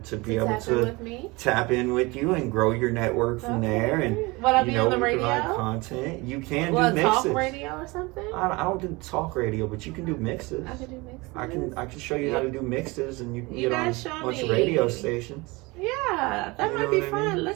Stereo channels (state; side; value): quieter; left; 24.3 dB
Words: be able to tap in with you and grow your network from there. And what, I be on the radio? Content. You can do mixes. Talk radio or something? I don't do talk radio, but you can do mixes. I can do mixes. I can show you how to do mixes, and you can get on a bunch of me. radio stations. Yeah, that might be fun.